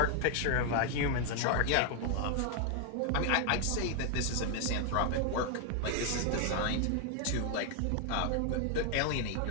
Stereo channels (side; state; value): both; different; correlation 0.00